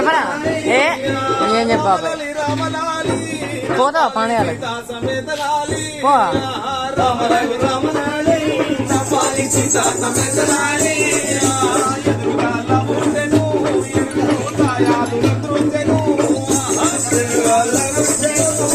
ఏం చెప్పా పోతా పాండయాలి పో రామలాలి రామలాలి రామాలి సీతా సమేతలాలి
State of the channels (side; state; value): both; identical; correlation 1.00